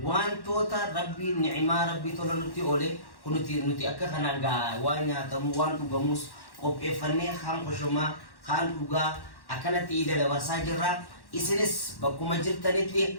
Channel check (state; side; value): late; right; 1.1 ms